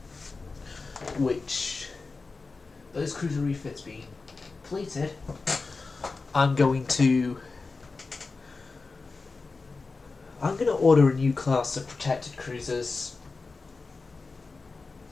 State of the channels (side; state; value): right; quieter; 4.0 dB